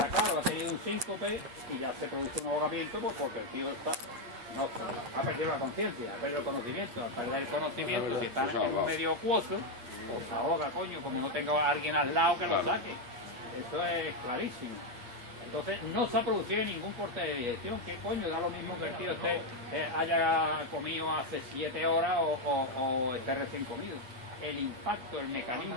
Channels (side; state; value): left; late; 8.4 ms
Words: claro, ha tenido un síncope y ya se produce un ahogamiento, pues porque el tío ha perdido la conciencia, ha perdido el conocimiento. Al perder el conocimiento, si está en un medio acuoso, pues se ahoga, coño, como no tenga a alguien al lado que lo saque. Eso es clarísimo. Entonces no se ha producido ningún corte de digestión. ¿Qué coño? Da lo mismo que el tío haya comido hace 7 horas o esté recién comido. El impacto, el